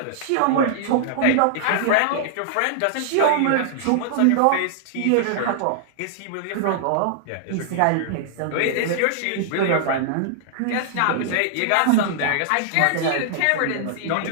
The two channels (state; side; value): different; both; correlation -0.01